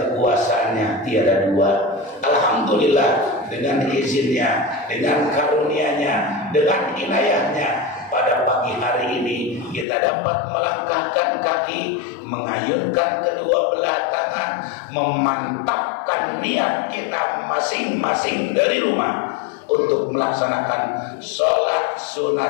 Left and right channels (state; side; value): drops out; right; at 9.9 s